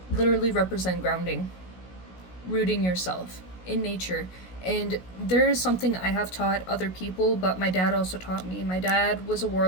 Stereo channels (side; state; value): right; late; 16 ms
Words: literally represent grounding, rooting yourself in nature. And there is something I have taught other people, but my dad also taught me. My dad was a